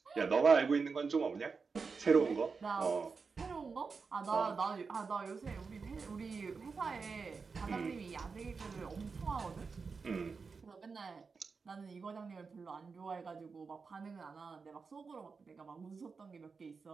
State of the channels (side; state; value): left; quieter; 4.9 dB